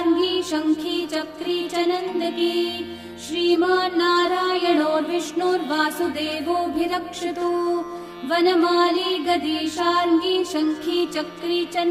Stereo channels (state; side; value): identical; both; correlation 1.00